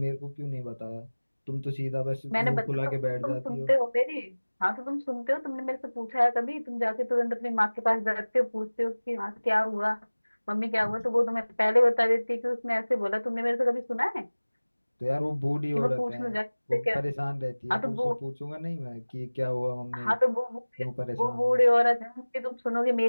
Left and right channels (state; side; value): inverted; both; correlation -1.00